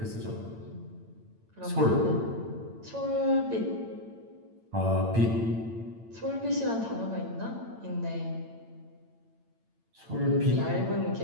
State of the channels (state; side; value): late; left; 8.9 ms